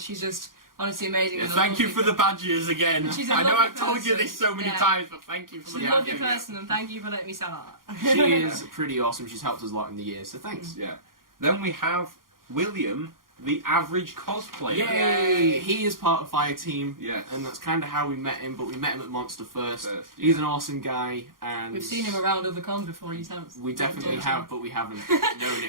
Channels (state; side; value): late; left; 0.91 ms